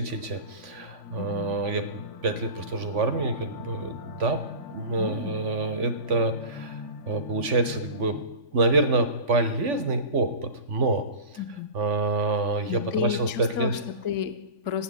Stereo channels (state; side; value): late; left; 3.5 ms